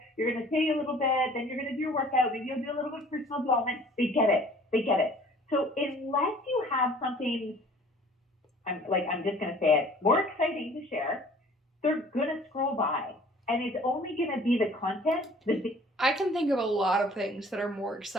you're going to take a little bit, then you're going to do your workout, maybe you'll do a little bit of personal development. They get it. They get it. So unless you have something, I'm just going to say it, more exciting to share, they're going to scroll by. And it's only going to be the content. I can think of a lot of things that are more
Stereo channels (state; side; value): normal; both; correlation 0.51